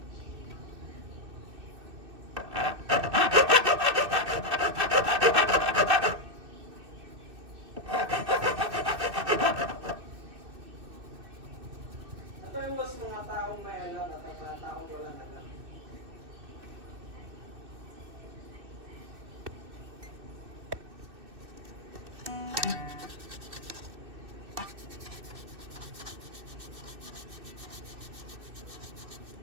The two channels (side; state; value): left; late; 2.6 ms